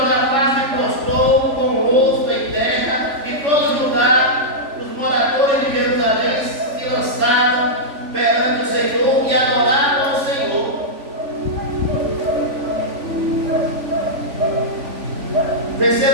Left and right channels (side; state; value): left; late; 3.5 ms